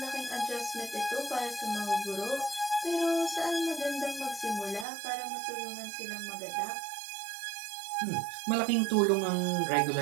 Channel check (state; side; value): drops out; left; at 4.9 s